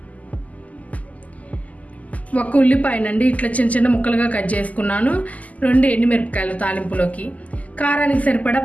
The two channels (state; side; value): late; right; 0.074 ms